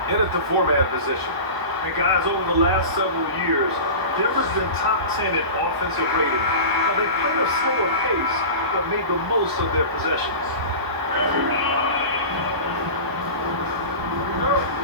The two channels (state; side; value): late; left; 1.0 ms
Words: in at the 4-man position. And guys, over the last several years, Denver's been top 10 in offensive rating. Now, they played a slower pace, but made the most of their possessions.